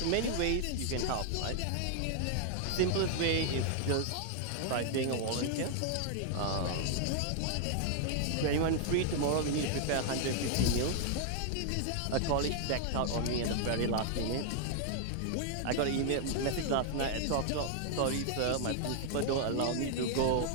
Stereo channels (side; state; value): both; different; correlation 0.00